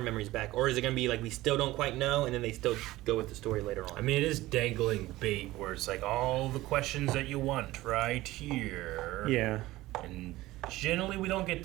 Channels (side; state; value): left; quieter; 17.6 dB